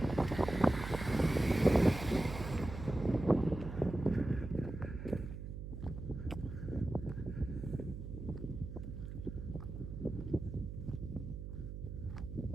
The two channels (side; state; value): right; noise; hum, 8 dB below the sound